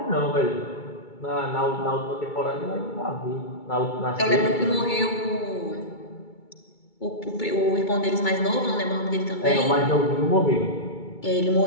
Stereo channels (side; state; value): right; late; 2.2 ms